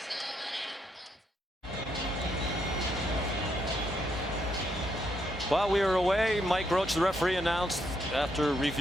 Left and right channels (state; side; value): normal; both; correlation 0.76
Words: While we were away, Mike Roach, the referee, announced after